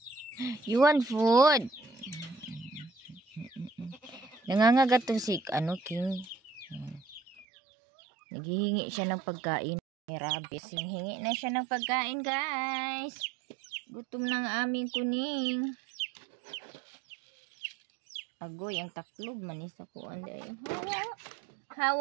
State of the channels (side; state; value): left; drops out; at 7.5 s